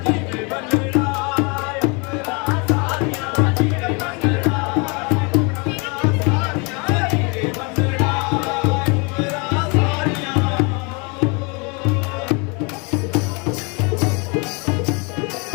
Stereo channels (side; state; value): right; quieter; 31.4 dB